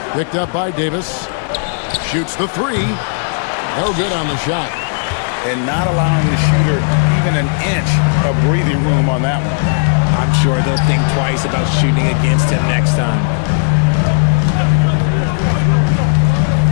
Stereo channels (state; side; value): silent; right; digital silence